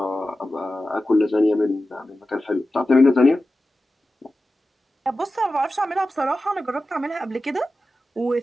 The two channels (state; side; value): normal; both; correlation 0.94